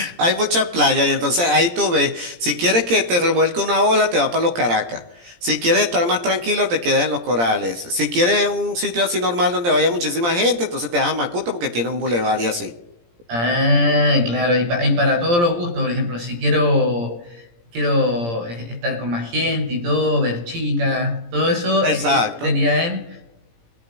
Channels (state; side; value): late; left; 17 ms